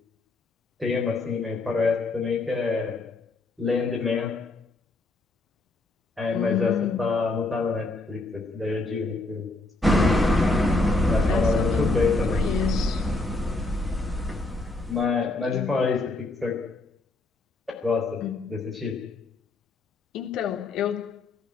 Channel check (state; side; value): quieter; right; 3.1 dB